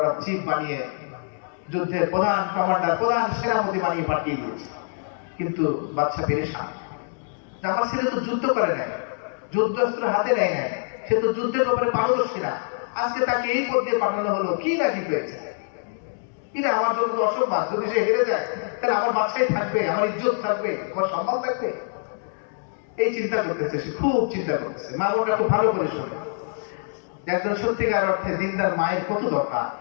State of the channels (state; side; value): silent; right; 60 dB below the other